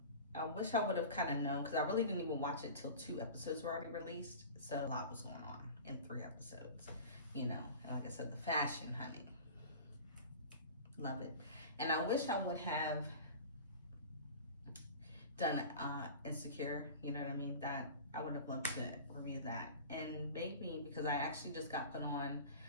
wish I would have kind of known, because I really didn't even watch it till 2 episodes were already released. So a lot was going on in 3 episodes, you know. And like I said, the fashion, honey. Love it. And I wish I would have done Insecure, you know what I mean? That I would have loved to review that. And maybe, because I actually just got put on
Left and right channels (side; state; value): both; inverted; correlation -0.36